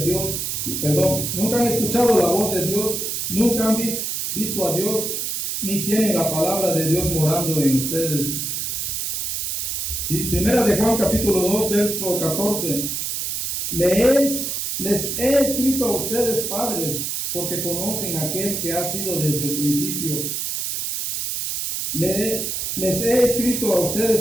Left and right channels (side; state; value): right; noise; hiss, 2 dB below the sound